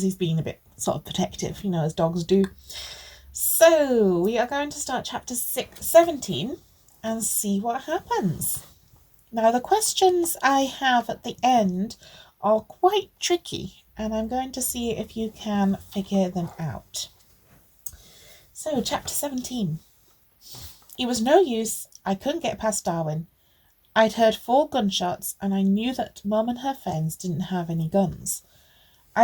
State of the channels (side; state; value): both; identical; correlation 1.00